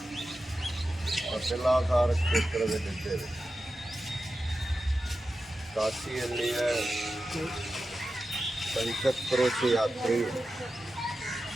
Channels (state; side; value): normal; both; correlation 0.92